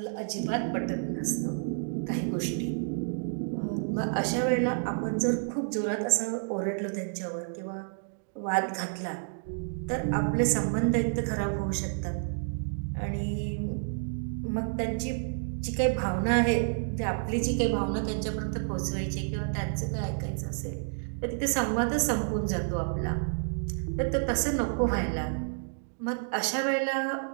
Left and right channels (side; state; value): left; silent; digital silence